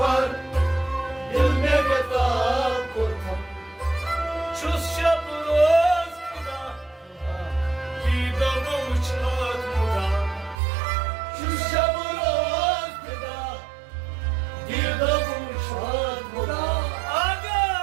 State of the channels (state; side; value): drops out; left; at 10.6 s